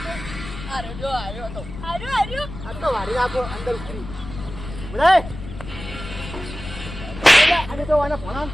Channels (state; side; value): noise; left; rumble, 11 dB below the sound